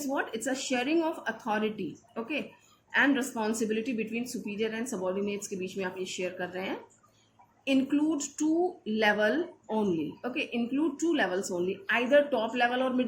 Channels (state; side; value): identical; both; correlation 1.00